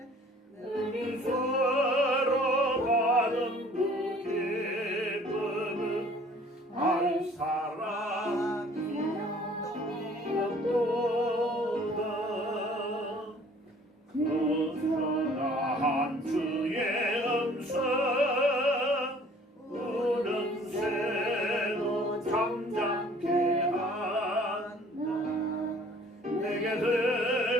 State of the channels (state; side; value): normal; both; correlation 0.53